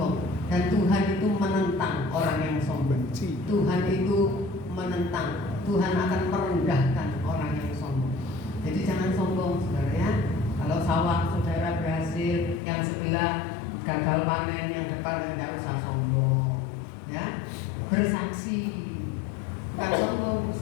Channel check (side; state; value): right; drops out; at 12.6 s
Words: Dan Tuhan itu menentang orang yang sombong. Tuhan itu menentang. Tuhan akan merendahkan orang yang sombong. Jadi jangan sombong, saudara ya. Kalau sawah saudara berhasil, yang sebelah gagal panen, yang depan tidak usah sombong, ya. Bersaksi, bukan sombong,